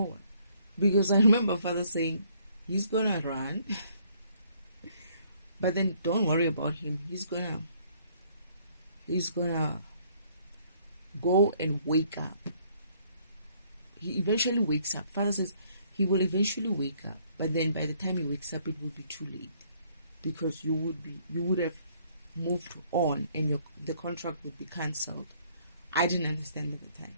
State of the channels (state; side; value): inverted; both; correlation -0.64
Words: Because I remember Father saying, he's gonna run. But then don't worry about him. He's gonna go and wake up. He eventually wakes up. Father says he will eventually wake up, but then by the time he wakes up, it will be too late, because you would have moved on, and the contract would be cancelled. I didn't understand at the time.